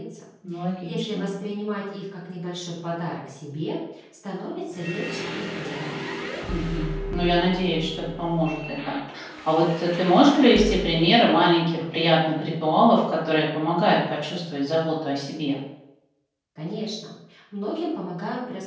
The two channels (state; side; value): identical; both; correlation 1.00